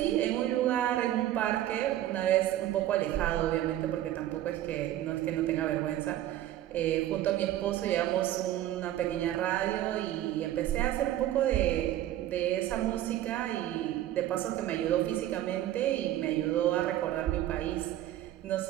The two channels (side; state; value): left; quieter; 13.3 dB